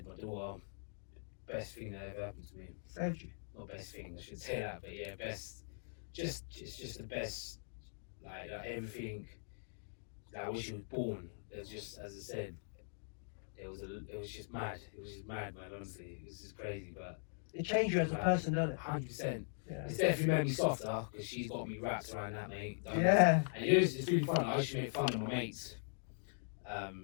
my daughter, best thing that ever happened to me. Saved you. Not best thing, I should say that, but yeah, best. It's just the best. Like everything. Like when she was born, it was just, as I said, it was just mad. It was just mad, man. Honestly, it was just crazy, but it changed you as a person, doesn't it? 100%. Yeah. It's definitely made me softer because she's got me wrapped around that, mate. Yeah. And it's really fun. I used to make fun of my mates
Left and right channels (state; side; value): silent; right; digital silence